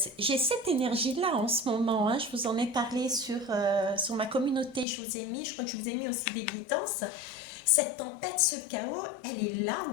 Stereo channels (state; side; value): drops out; right; at 4.9 s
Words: j'ai cette énergie-là en ce moment, hein, je vous en ai parlé sur ma communauté, je vous ai mis, je crois que je vous ai mis aussi des guidances. Cette tempête, ce chaos, elle est là,